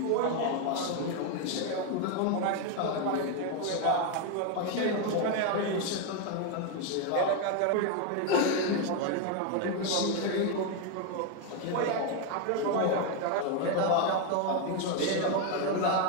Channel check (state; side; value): different; both; correlation 0.01